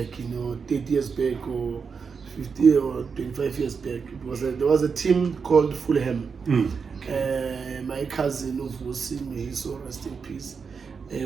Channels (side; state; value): left; quieter; 5.6 dB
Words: 30 years back or 50 or 25 years back. There was a team called Fulham. My cousin of Wosim, he so rest in peace,